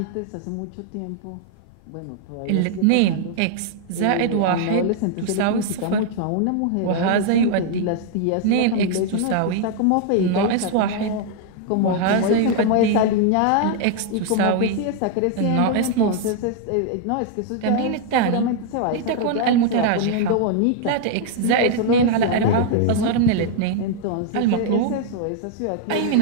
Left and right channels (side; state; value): both; different; correlation 0.00